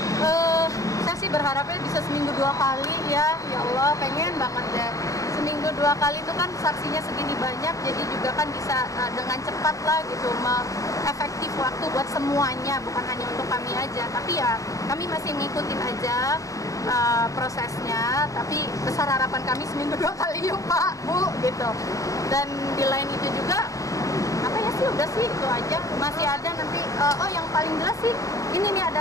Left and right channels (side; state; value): right; late; 0.16 ms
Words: Saya sih berharapnya bisa seminggu 2 kali ya. Ya Allah, pengen banget deh. Seminggu 2 kali itu kan saksinya segini banyak, jadi juga kan bisa dengan cepat lah gitu, efektif waktu buat semuanya, bukan hanya untuk kami aja. Tapi ya kami masih ngikutin aja prosesnya, tapi besar harapan kami seminggu 2 kali yuk Pak, Bu gitu. Dan di lain itu juga apa ya sih, udah sih itu aja. Masih ada nanti yang paling jelas sih ini nih,